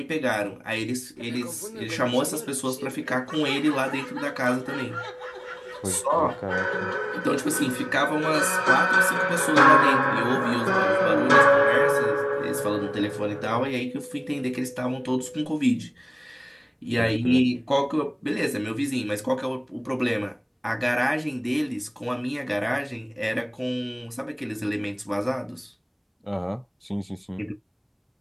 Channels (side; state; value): both; identical; correlation 1.00